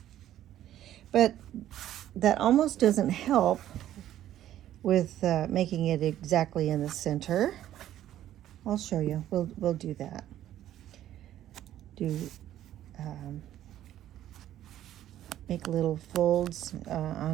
but that almost doesn't help with making it exactly in the center. I'll show you. We'll do that. Make little folds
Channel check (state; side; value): quieter; left; 12.3 dB